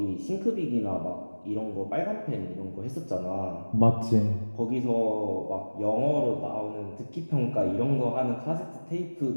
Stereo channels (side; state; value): both; inverted; correlation -1.00